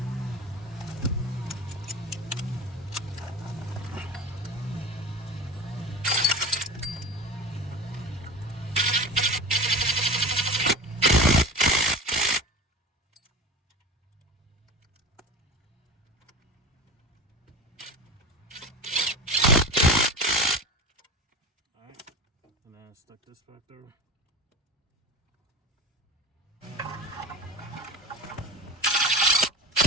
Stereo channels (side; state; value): both; normal; correlation 0.31